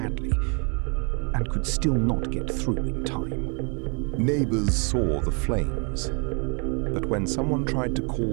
and could still not get through in time. Neighbors saw the flames, but when someone tried to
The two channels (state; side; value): quieter; left; 36.3 dB